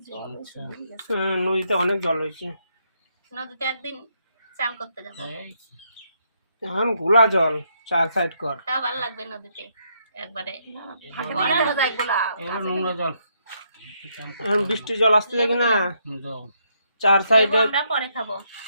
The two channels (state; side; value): inverted; both; correlation -0.76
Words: নদীতে অনেক জল হয়েছে। নদীতে একদিন চান করতে যাবো, এখন ঘোলা জল, 4 সাইড কর। তাও ভালো লাগবে নদীতে। একবারে এগুলো নোংরা জল। এখন বৃষ্টির জল আসতে লাগে না, 4 সাইডে আমরা পরে খাবো।